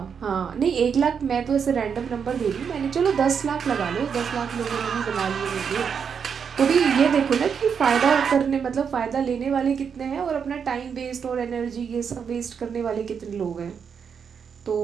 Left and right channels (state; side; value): quieter; left; 6.8 dB